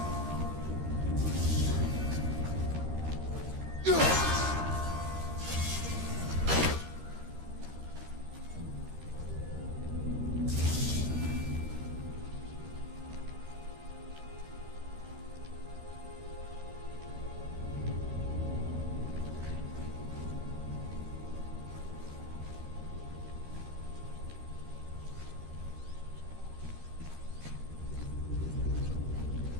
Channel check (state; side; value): late; left; 13 ms